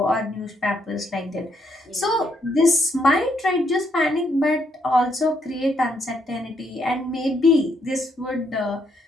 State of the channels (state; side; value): normal; both; correlation 0.74